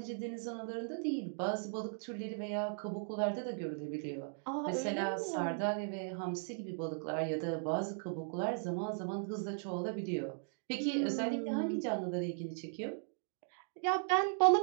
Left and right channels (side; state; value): left; silent; digital silence